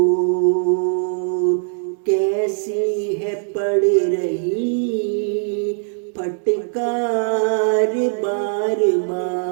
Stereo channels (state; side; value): silent; left; digital silence